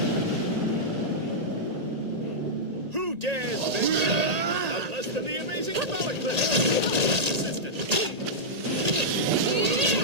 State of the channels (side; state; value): left; late; 1.8 ms